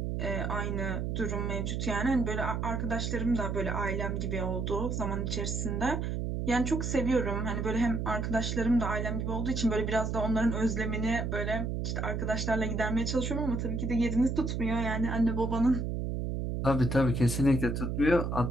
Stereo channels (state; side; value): noise; right; hum, 1 dB below the sound